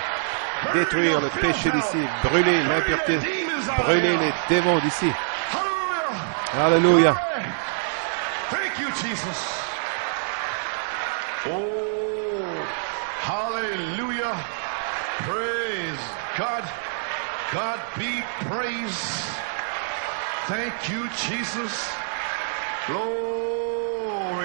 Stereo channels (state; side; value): silent; left; 60 dB below the other